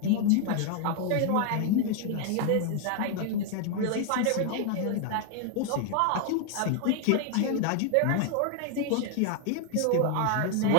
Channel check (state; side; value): different; both; correlation 0.00